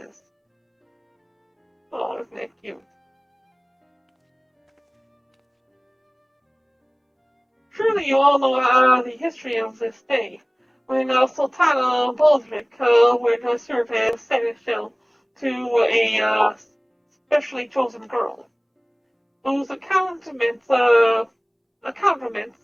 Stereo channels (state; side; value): identical; both; correlation 1.00